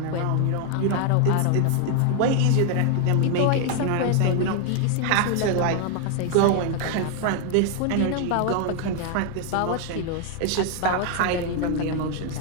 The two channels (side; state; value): both; different; correlation 0.00